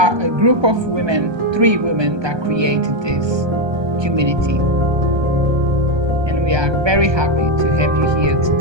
a group of women, 3 women that created this community. And we are very happy to have you here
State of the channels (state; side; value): late; left; 1.2 ms